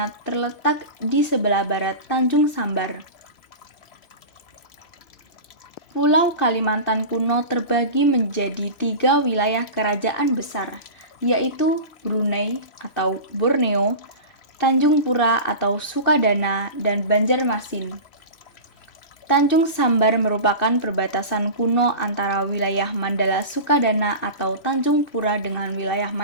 terletak di sebelah barat Tanjung Sambar. Pulau Kalimantan kuno terbagi menjadi 3 wilayah kerajaan besar, yaitu Brunei atau Borneo, Tanjung Pura atau Sukadana, dan Banjarmasin. Tanjung Sambar merupakan perbatasan kuno antara wilayah Mandala Sukadana atau Tanjung Pura dengan wilayah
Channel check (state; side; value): late; right; 3.0 ms